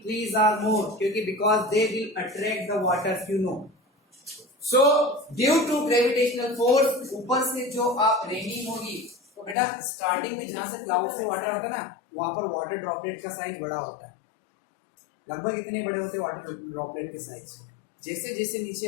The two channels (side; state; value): right; drops out; at 9.6 s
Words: trees are more, क्योंकि because they will attract the water, you know. So due to gravitational force, ऊपर से जो आप रेनिंग होगी, तो बेटा स्टार्टिंग में जहां से क्लाउड से वाटर आता है ना, वहां पर वाटर ड्रॉपलेट का साइज बड़ा होता है। लगभग इतने बड़े होते हैं वाटर ड्रॉपलेट के साइज। जैसे जैसे नीचे